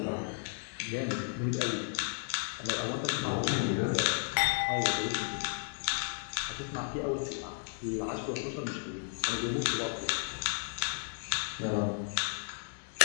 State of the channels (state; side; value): silent; right; 55 dB below the other